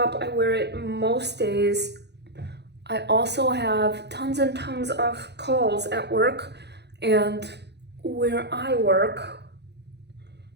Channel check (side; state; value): left; late; 0.49 ms